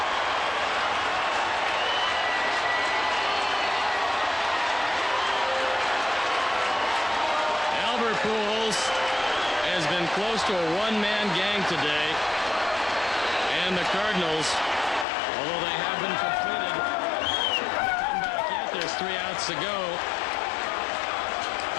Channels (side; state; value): right; drops out; at 15.1 s